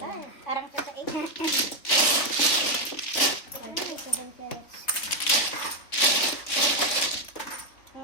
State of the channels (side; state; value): right; late; 3.5 ms